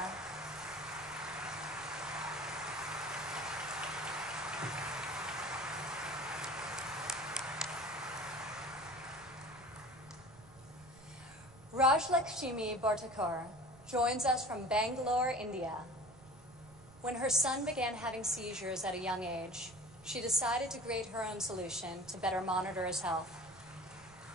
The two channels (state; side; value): noise; right; rumble, 22 dB below the sound